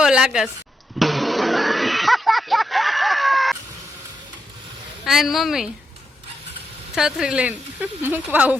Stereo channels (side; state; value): both; normal; correlation 0.84